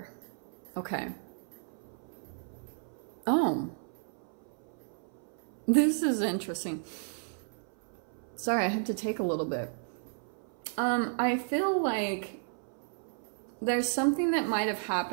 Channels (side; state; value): left; silent; 56 dB below the other